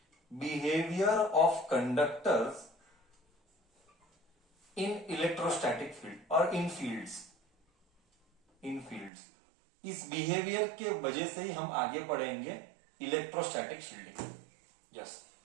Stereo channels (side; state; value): left; drops out; at 9.1 s